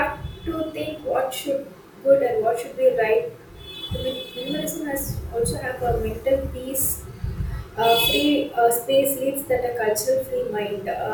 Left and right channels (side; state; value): both; identical; correlation 1.00